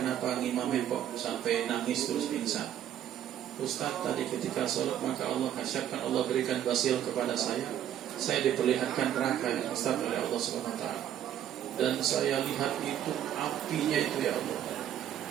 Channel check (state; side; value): quieter; left; 10.7 dB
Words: ngimamin kok sampai nangis terus pingsan? Ustaz, tadi ketika sholat maka Allah kasyafkan, Allah berikan basil kepada saya diperlihatkan neraka yang Ustaz oleh Allah SWT, dan saya lihat itu apinya itu ya Allah,